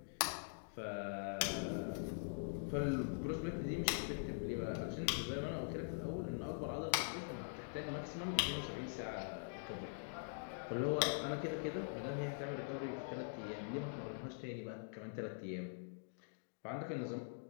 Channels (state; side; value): silent; right; digital silence